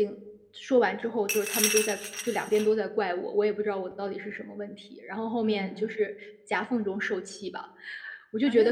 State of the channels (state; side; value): identical; both; correlation 1.00